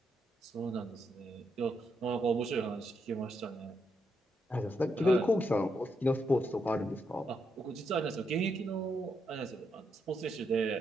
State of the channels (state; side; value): normal; both; correlation 0.80